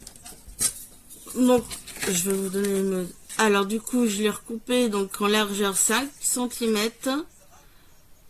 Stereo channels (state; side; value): identical; both; correlation 1.00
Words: je vais vous donner une... Alors, du coup, je l'ai recoupé donc en largeur 5 cm